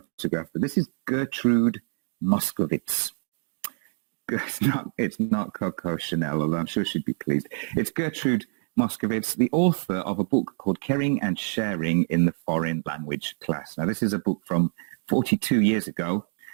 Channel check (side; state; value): left; silent; digital silence